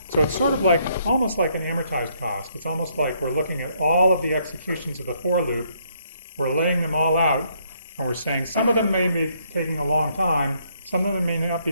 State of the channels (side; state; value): both; inverted; correlation -0.70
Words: So it's sort of like, almost like an amortized cost. It's almost like we're looking at all of the executions of the for loop, we're laying them all out, and we're saying some of them may be taking a long time, some of them may not be